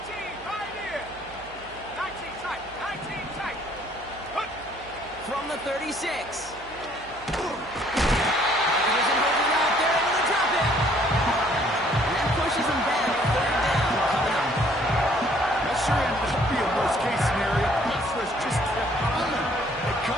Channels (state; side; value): noise; right; hum, 21 dB below the sound